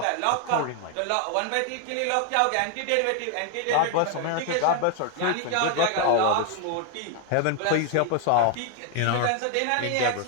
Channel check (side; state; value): both; different; correlation 0.00